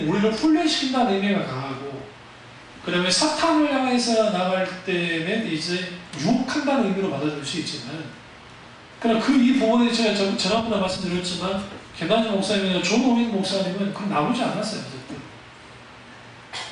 우리를 훈련시킨다는 의미가 강하고, 그 다음에 사탄을 향해서 나갈 때는 이제 유혹한다는 의미로 받아들일 수 있지만, 그러나 이 부분에 제가 지난번에 말씀드렸지만, 김남준 목사님이나 조노민 목사님은 그건 나오지 않았어요.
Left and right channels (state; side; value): identical; both; correlation 1.00